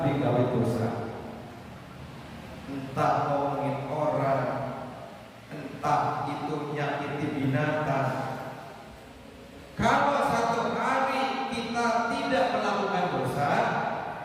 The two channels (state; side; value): identical; both; correlation 1.00